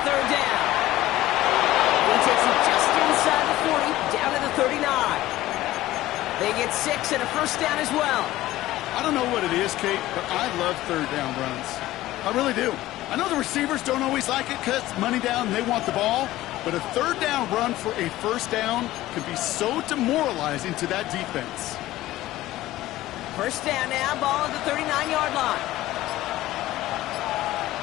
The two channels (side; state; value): right; quieter; 15.9 dB